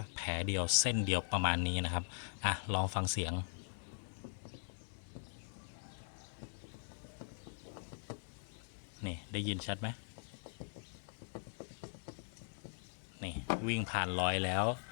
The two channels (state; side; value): silent; right; digital silence